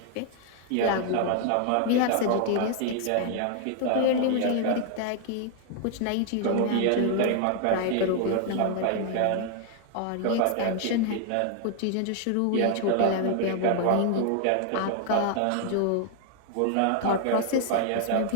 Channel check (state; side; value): different; both; correlation 0.00